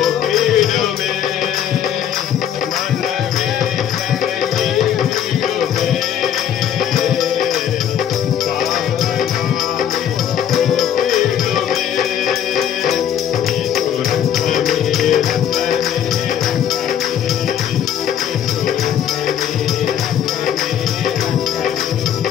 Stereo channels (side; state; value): right; quieter; 9.5 dB